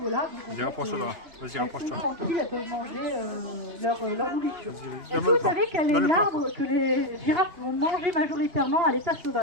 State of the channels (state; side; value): late; left; 2.9 ms